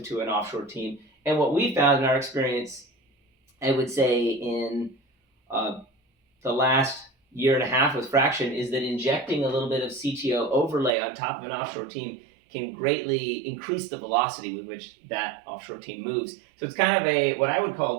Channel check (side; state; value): left; drops out; at 10.9 s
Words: to an offshore team. And what we found in our experience, I would say in the last year and a half with Fraction, is that injecting a little bit of CTO overlay on top of an offshore team can greatly increase the velocity with which that offshore team moves. So it's kind of what I would call